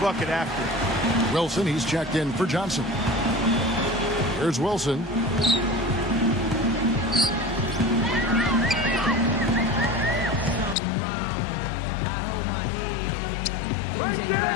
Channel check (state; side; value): drops out; right; at 10.8 s